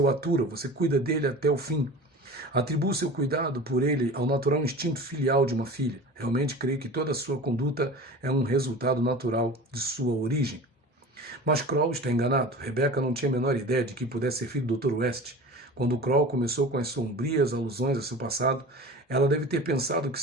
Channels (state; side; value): normal; both; correlation 0.37